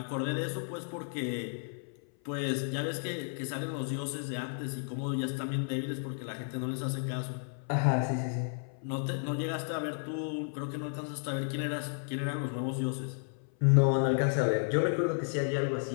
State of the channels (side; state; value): right; silent; 56 dB below the other